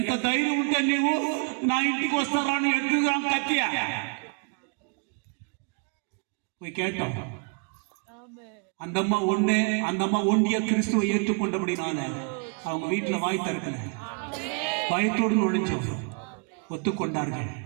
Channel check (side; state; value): left; quieter; 38.6 dB